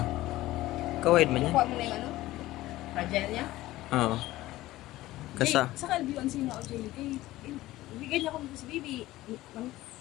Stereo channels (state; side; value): quieter; right; 16.8 dB